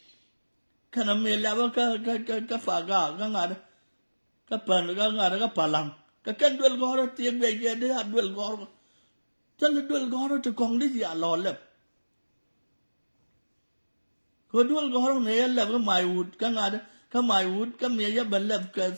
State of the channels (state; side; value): inverted; both; correlation -1.00